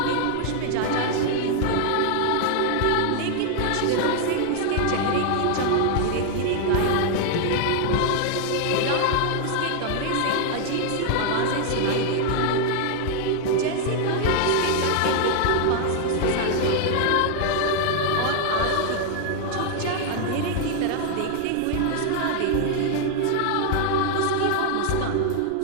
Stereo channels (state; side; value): different; both; correlation 0.00